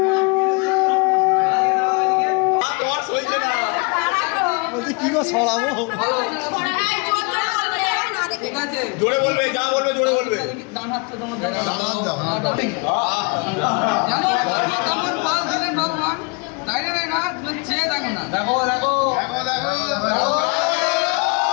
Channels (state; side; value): quieter; right; 32.7 dB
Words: কি গো ছড়াবো ঠিক আছে জোরে বলবে যা বলবে জোরে বলবে ডান হাতটা তোমার কেমন ভালো দিলেন ভগবান তাই না তুমি চেয়ে দেখো না দেখো দেখো দেখো দেখো